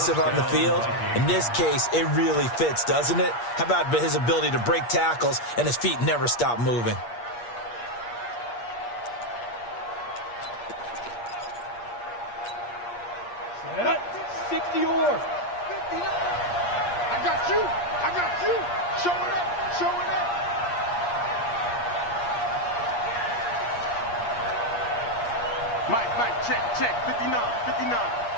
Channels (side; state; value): right; late; 8.5 ms